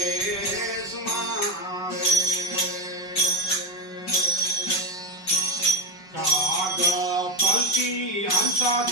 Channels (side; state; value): right; late; 5.3 ms